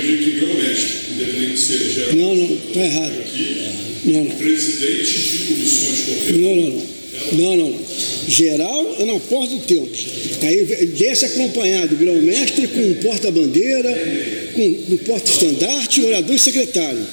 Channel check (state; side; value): inverted; both; correlation -1.00